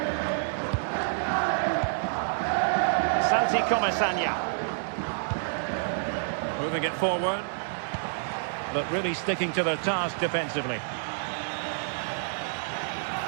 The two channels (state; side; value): silent; left; digital silence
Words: Santi Comasagna. Moving it forward, but really sticking to their task defensively.